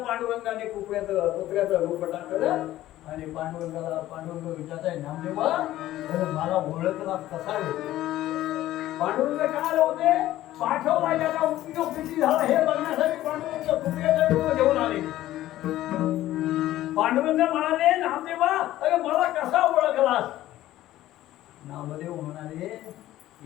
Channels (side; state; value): right; quieter; 14.5 dB